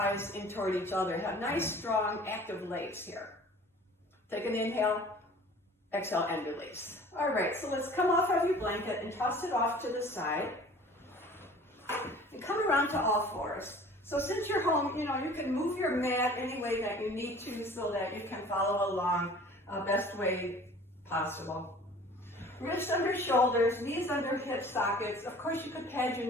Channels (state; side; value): normal; both; correlation 0.47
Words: in toward each other. Have nice, strong, active legs here. Take an inhale, exhale, and release. All right, so let's come off of your blanket and toss it off to the side. And come around to all fours. So since you're home, you can move your mat any way that you need to so that you can follow along best way possible. Wrists under shoulders, knees under hip sockets. Of course, you could pad your